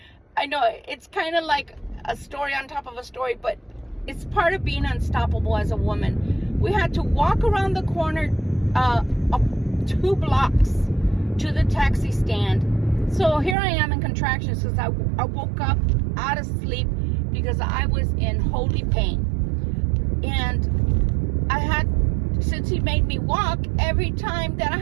I know it's kind of like a story on top of a story, but it's part of being unstoppable as a woman. We had to walk around the corner 2 blocks to the taxi stand. So here I am in contractions because I woke up out of sleep because I was in holy pain. And since he made me walk, every time that I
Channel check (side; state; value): left; drops out; at 13.6 s